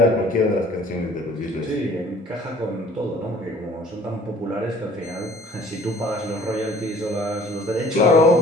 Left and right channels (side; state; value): both; normal; correlation 0.53